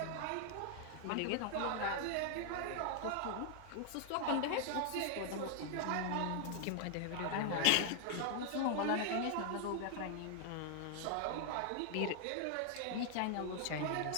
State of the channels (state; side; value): different; both; correlation 0.00